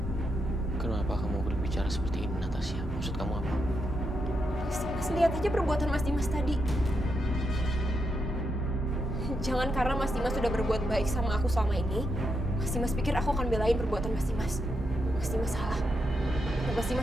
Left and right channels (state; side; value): normal; both; correlation 0.82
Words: Kenapa kamu berbicara seperti ini, Natasha? Maksud kamu apa? Mas lihat aja perbuatan Mas Dimas tadi. Jangan karena Mas Dimas sudah berbuat baik sama aku selama ini, Mas Dimas pikir aku akan belain perbuatan Mas Dimas. Mas Dimas salah. Dan Mas